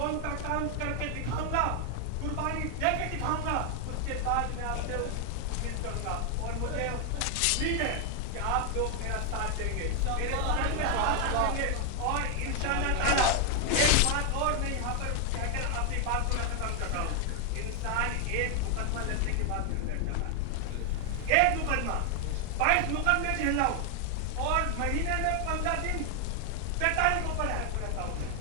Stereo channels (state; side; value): different; both; correlation 0.00